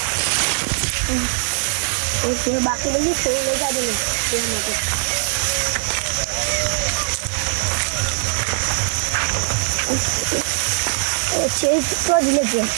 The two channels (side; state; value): left; silent; 65 dB below the other